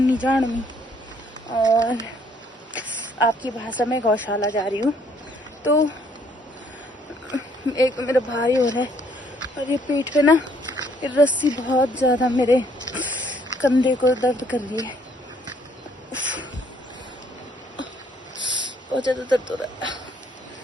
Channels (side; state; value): both; normal; correlation 0.65